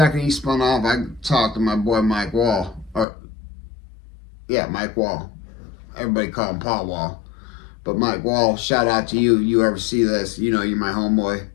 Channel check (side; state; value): right; drops out; at 3.1 s